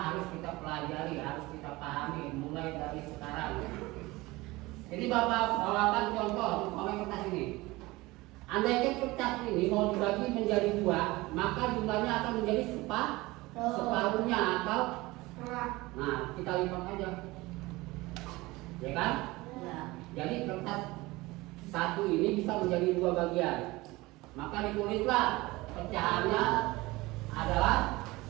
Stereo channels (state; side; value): quieter; left; 20.9 dB